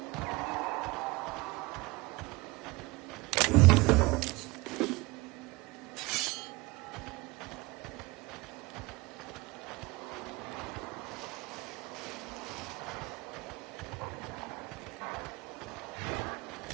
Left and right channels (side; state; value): left; quieter; 23.1 dB